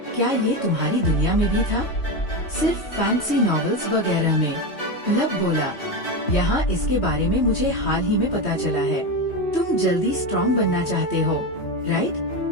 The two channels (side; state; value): right; late; 3.1 ms